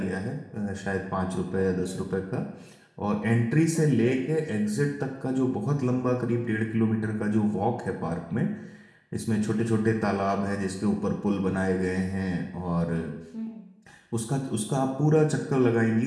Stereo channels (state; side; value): identical; both; correlation 1.00